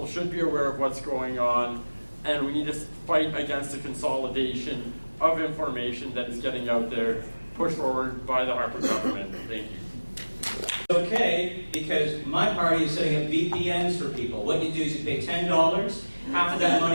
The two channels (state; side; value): inverted; both; correlation -1.00